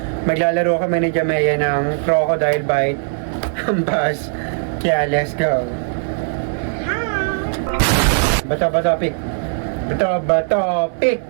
maglalaro kami ni Jamea ng crocodile bite. Hampas. Kaya, let's go. Bato, pick.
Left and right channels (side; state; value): left; silent; 65 dB below the other